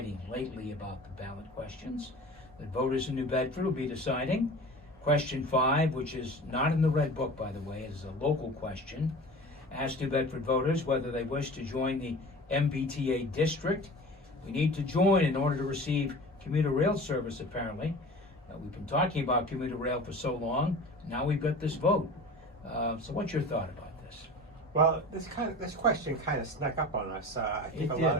lately about the ballot questions that voters in New Bedford will be deciding. Question 5, which is not in the Red Book, by the way, it is a local question, asks New Bedford voters whether they wish to join the MBTA district. We need to join in order to receive commuter rail service, apparently. We've been talking about commuter rail for so long, now we've got this vote. So what's your thought about this? Well, this question kind of snuck up on us. I think a lot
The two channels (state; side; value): normal; both; correlation 0.38